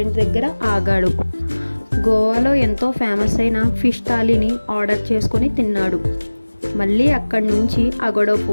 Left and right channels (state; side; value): inverted; both; correlation -1.00